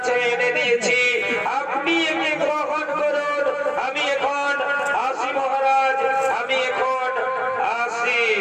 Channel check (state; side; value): identical; both; correlation 1.00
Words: এনে দিয়েছি, আপনি একে গ্রহণ করুন। আমি এখন আসি মহারাজ, আমি এখন আসি।